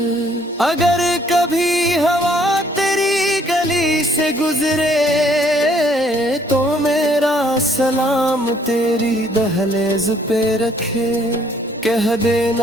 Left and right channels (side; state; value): both; normal; correlation 0.64